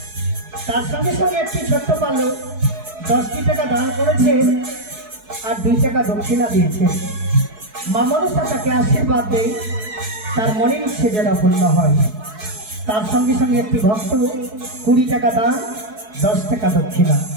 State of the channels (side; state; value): left; late; 4.7 ms